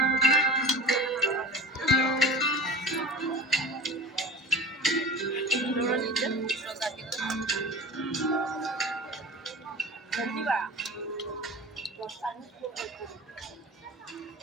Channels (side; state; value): both; normal; correlation 0.36